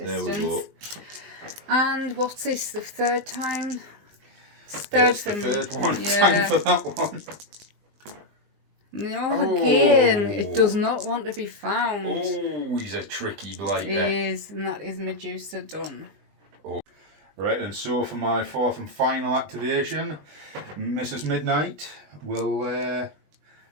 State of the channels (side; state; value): left; late; 20 ms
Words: There we go. And what's this? The third time? It's the third one. Yeah. Time for that one. No, again, it does not want to be found. Oh, he's a tricky blighter. It is, and that is Medusa done. Oh. Right, and so for my fourth and final activation, Mrs. Midnight will